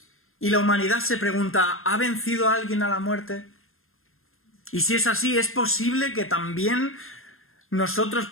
Y la humanidad se pregunta, ¿ha vencido a alguien a la muerte? Y si es así, ¿es posible que también nosotros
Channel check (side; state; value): right; late; 0.61 ms